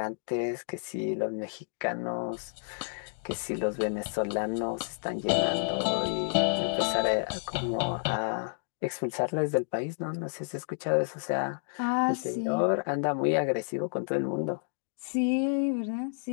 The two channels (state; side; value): silent; right; digital silence